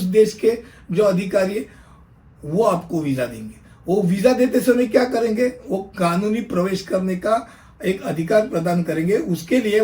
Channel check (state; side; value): identical; both; correlation 1.00